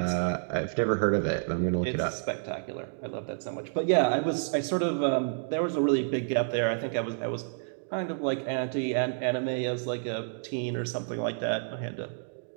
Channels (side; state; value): left; silent; digital silence